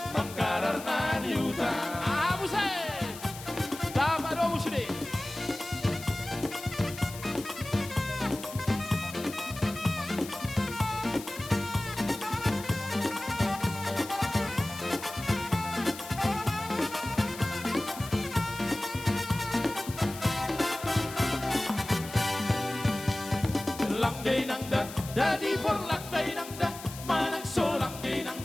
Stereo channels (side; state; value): left; noise; hiss, 13 dB below the sound